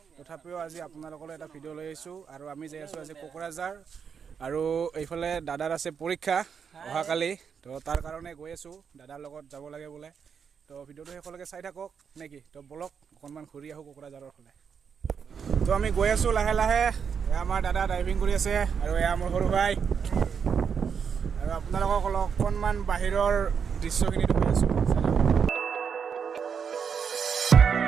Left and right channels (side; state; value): left; quieter; 6.8 dB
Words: তথাপিও আজি আপোনালোকলৈ এটা ভিডিঅ' লৈ আহিছোঁ। আৰু আমি যাই আছোঁ আজি কোকৰাঝাৰ, আৰু এইফালে দাদাৰ আছে পৰীক্ষা অহাকালি, তো তাৰ কাৰণে গৈ আছোঁ, দাদাৰ লগত যাব লাগে বোলে। তো ভিডিঅ'টো শেষলৈকে চাই থাকক নেকি, তো বলক অকণমান ঘূৰি আহোঁ কোকৰাঝাৰৰ ফালে। তো আমি গৈ আছোঁ লাহে লাহে। এয়া আমাৰ দাদা ড্ৰাইভিং কৰি আছে আৰু এয়া মোৰ সৰু ভাই, আৰু আপোনালোকক অকণমান বাহিৰৰ দৃশ্যখিনি দেখুৱাই আছোঁ।